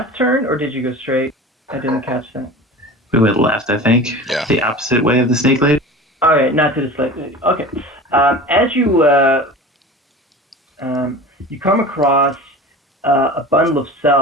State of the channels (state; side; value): normal; both; correlation 0.36